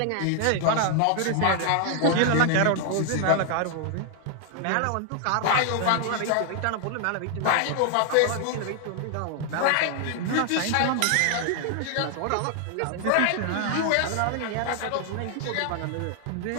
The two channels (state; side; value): different; both; correlation 0.00